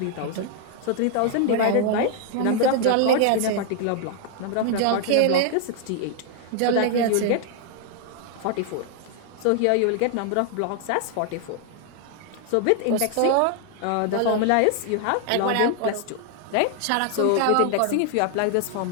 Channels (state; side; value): different; both; correlation 0.00